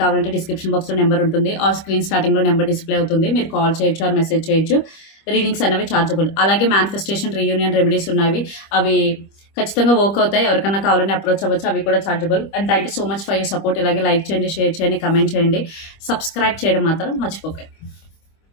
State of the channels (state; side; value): late; right; 25 ms